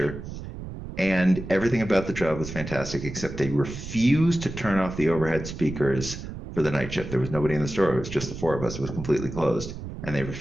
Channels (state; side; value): noise; right; rumble, 10 dB below the sound